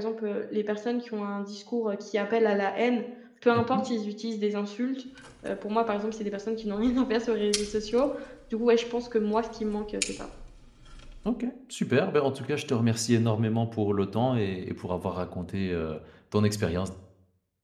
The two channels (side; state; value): both; identical; correlation 1.00